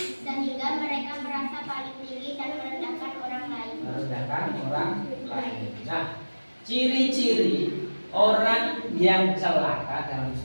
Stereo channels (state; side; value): inverted; both; correlation -1.00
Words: sehingga mereka merasa paling tinggi dan merendahkan orang lain. Nah, ciri-ciri orang yang celaka dalam